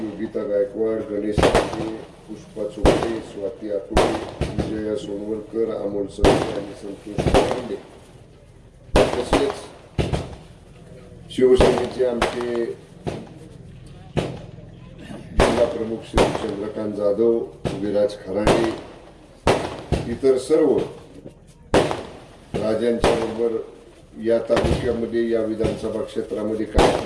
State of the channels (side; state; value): both; identical; correlation 1.00